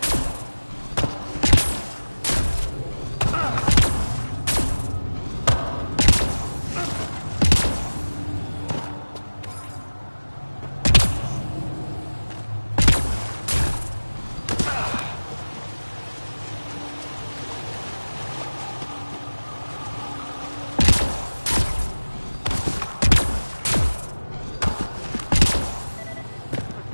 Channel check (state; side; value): inverted; both; correlation -1.00